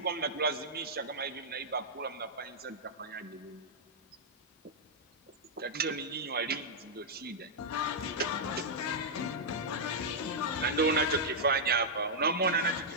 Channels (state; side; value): normal; both; correlation -0.08